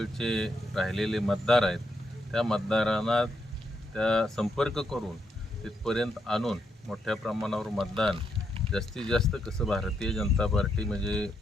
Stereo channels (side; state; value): both; normal; correlation 0.80